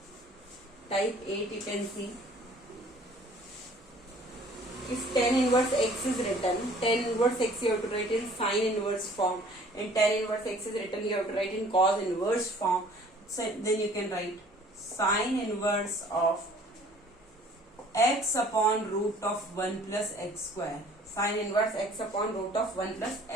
Type 8 you can see. If tan inverse x is written, tan inverse x you have to write in sine inverse form, and tan inverse x is written you have to write in cos inverse form. So then you can write sine inverse of x upon root of 1 plus x square. Sine inverse x upon root of 1 plus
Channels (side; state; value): both; normal; correlation 0.53